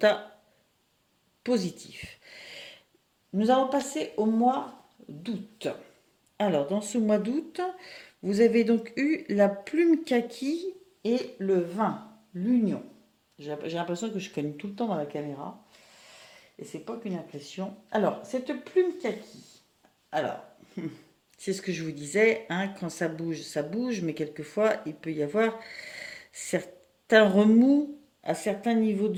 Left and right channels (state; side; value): identical; both; correlation 1.00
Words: positif. Nous allons passer au mois d'août. Alors, dans ce mois d'août, vous avez donc eu la plume kaki et le vin, l'union. J'ai l'impression que je cogne tout le temps dans la caméra. Et c'est pas qu'une impression. Alors, cette plume kaki. Alors, c'est ce que je vous disais, hein, quand ça bouge, mais quelquefois, il peut y avoir certains remous à certains niveaux de